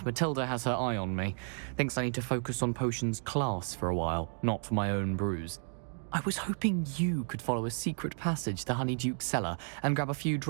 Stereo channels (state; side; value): silent; left; 56 dB below the other